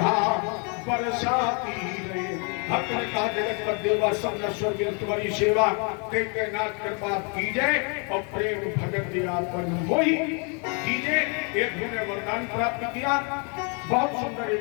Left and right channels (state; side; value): quieter; right; 37.1 dB